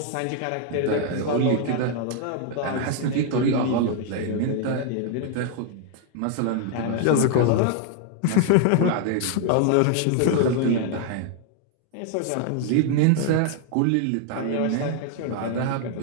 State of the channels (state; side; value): different; both; correlation 0.00